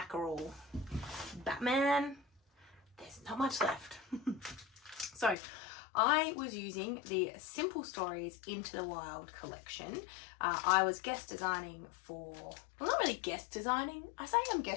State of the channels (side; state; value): right; drops out; at 5.4 s